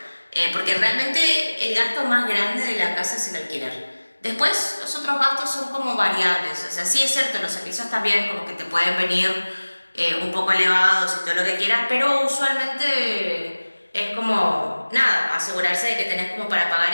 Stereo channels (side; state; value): both; inverted; correlation -1.00